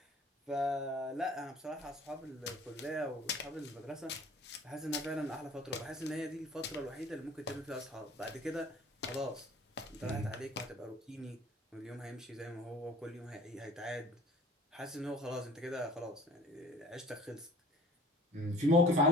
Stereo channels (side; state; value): both; normal; correlation 0.49